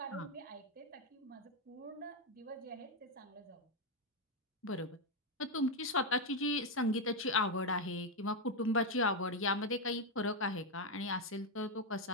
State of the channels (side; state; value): both; normal; correlation 0.04